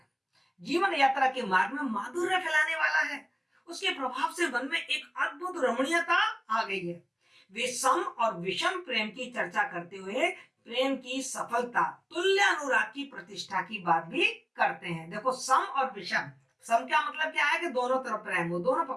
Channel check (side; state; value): both; identical; correlation 1.00